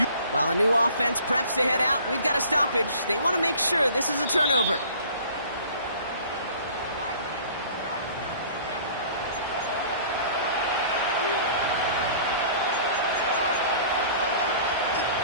While a new offense preps to head out, we've got a stoppage. They want to make sure this is a turnover.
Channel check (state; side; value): inverted; both; correlation -0.49